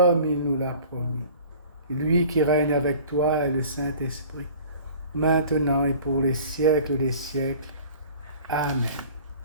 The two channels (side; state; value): both; inverted; correlation -0.46